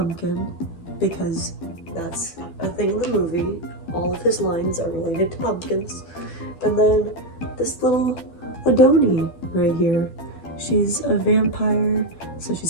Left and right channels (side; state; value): right; late; 12 ms